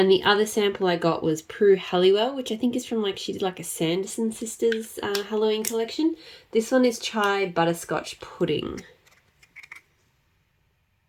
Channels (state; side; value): identical; both; correlation 1.00